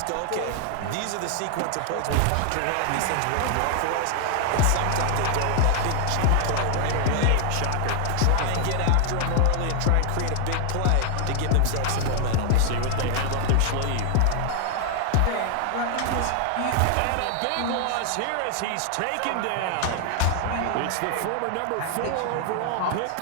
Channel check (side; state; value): both; different; correlation 0.00